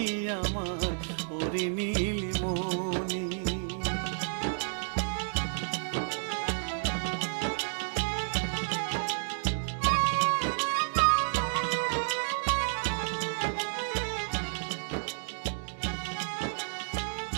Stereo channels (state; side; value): silent; left; digital silence